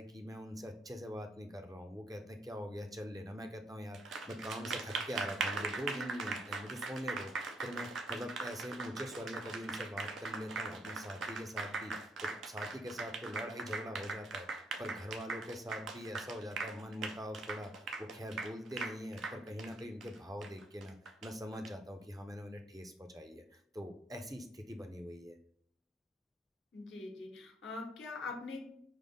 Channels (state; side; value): normal; both; correlation 0.71